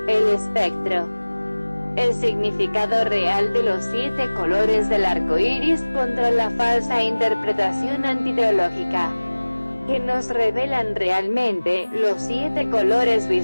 el espectro. El significado real de los 7 colores del arco iris contra la falsa interpretación antiteológica, que nos revelan realmente los 7 colores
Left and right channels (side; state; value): both; inverted; correlation -1.00